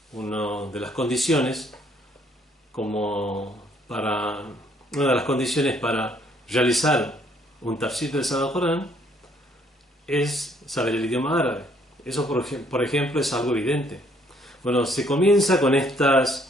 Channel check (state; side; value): normal; both; correlation 0.66